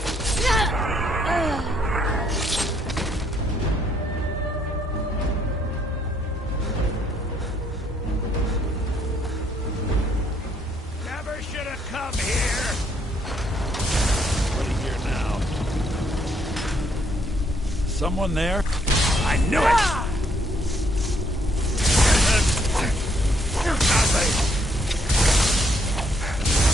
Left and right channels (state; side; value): normal; both; correlation 0.70